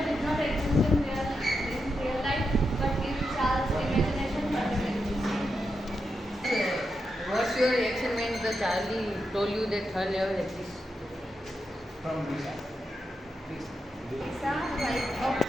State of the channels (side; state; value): both; normal; correlation 0.86